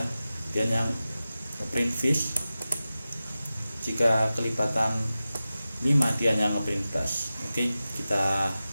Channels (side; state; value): both; inverted; correlation -0.95